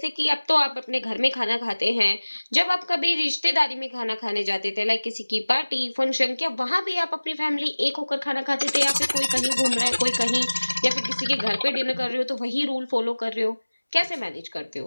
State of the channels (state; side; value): inverted; both; correlation -1.00